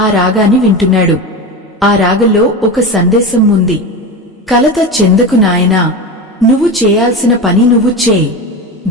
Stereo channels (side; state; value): both; normal; correlation 0.23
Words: రాగాన్ని వింటున్నాడు. ఆ రాగంలో ఒక సందేశం ఉంది. కలత చెందకు నాయనా, నువ్వు చేయాల్సిన పని నువ్వు చేయి,